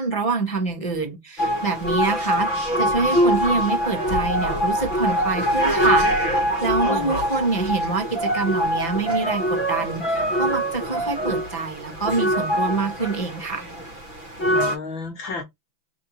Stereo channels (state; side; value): late; right; 5.9 ms